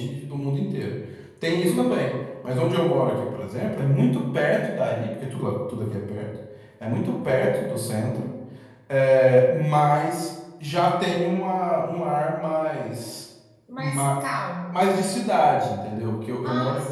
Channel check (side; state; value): both; identical; correlation 1.00